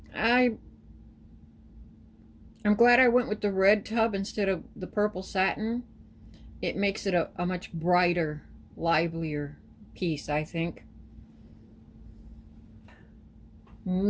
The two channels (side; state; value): both; identical; correlation 1.00